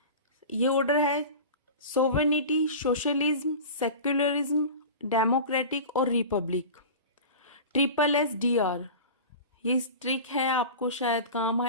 ये ऑर्डर है सोवेनिटी, सोशलिज्म, सेक्युलरिज्म, डेमोक्रेटिक और रिपब्लिक। SSDR, ये ट्रिक है, आपको शायद काम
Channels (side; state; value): both; inverted; correlation -0.33